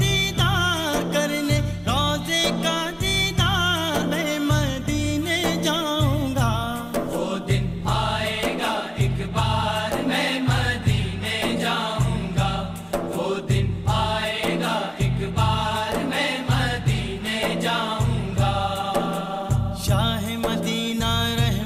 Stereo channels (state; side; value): identical; both; correlation 1.00